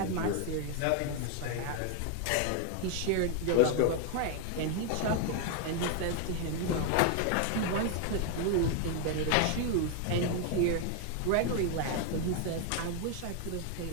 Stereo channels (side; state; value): both; different; correlation 0.01